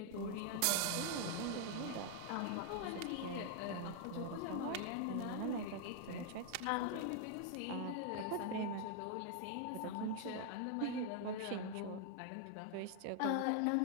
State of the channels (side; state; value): both; different; correlation 0.00